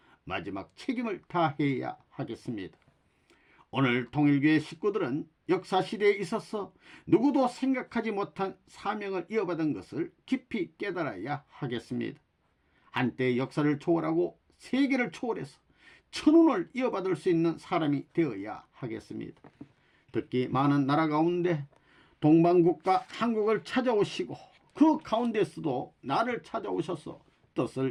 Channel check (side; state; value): both; identical; correlation 1.00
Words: 마지막 책임을 다해야 하겠습니다. 오늘 통일교회 식구들은 역사시대에 있어서 누구도 생각하지 못한 사명을 이어받은 것을 깊이 깨달아야 하겠습니다. 한때 역사를 초월하고 세계를 초월해서 천운을 이어받을 수 있는 사람이 되어야 하겠습니다. 특히 많은 나라 가운데 동방국가 한국을 찾아오시고 그 가운데서도 나를 찾아오셔서